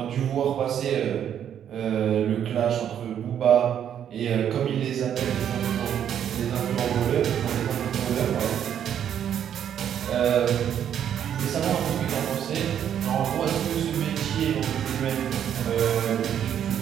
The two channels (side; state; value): left; quieter; 9.4 dB